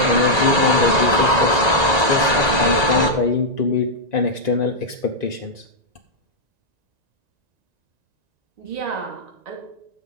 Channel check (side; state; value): left; late; 1.9 ms